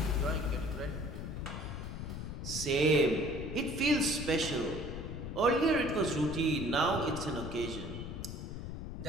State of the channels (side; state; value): left; noise; rumble, 7 dB below the sound